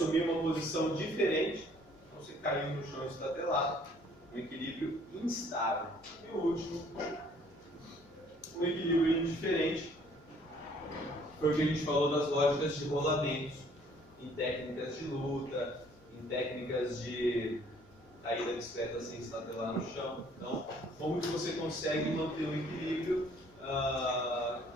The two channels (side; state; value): left; noise; hum, 28 dB below the sound